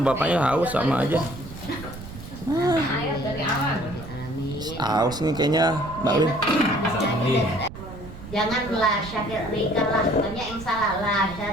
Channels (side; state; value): right; noise; rumble, 13 dB below the sound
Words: bapaknya haus sama aja. Amin. Haus nih kayaknya Mbak Win. Jangan la syarikalah, banyak yang salah. La